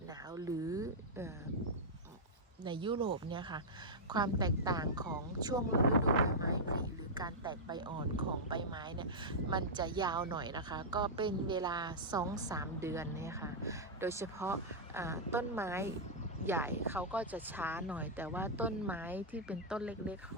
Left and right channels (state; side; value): normal; both; correlation -0.07